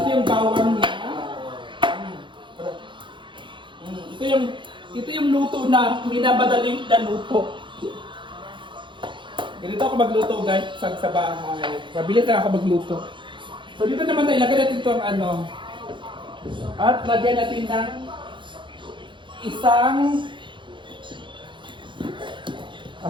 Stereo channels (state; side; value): late; left; 0.23 ms